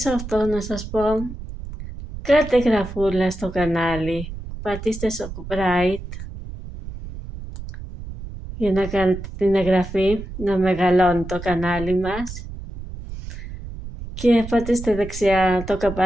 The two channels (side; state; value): right; noise; rumble, 10 dB below the sound